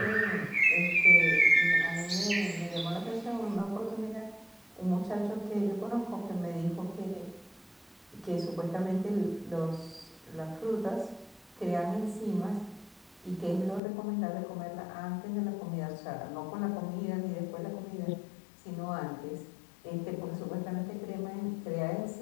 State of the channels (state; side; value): drops out; right; at 13.8 s